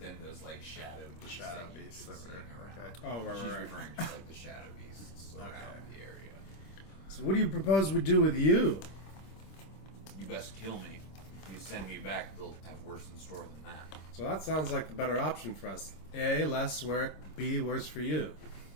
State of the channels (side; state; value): right; late; 26 ms